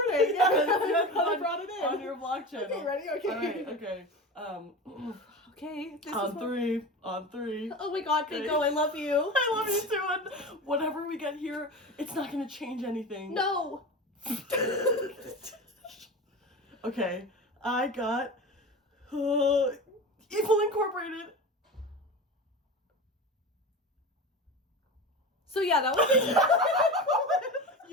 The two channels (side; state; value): both; normal; correlation 0.28